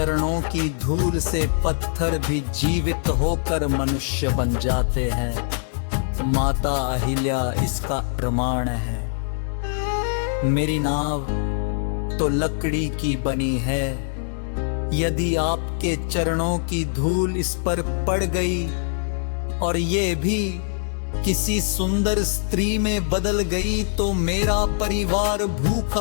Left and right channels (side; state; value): right; silent; digital silence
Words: की धूल से पत्थर भी जीवित होकर मनुष्य बन जाते हैं। माता अहिल्या इसका प्रमाण है। मेरी नाव तो लकड़ी की बनी है। यदि आपके चरणों की धूल इस पर पड़ गई और ये भी किसी सुंदर स्त्री में बदल गई, तो मेरा परिवार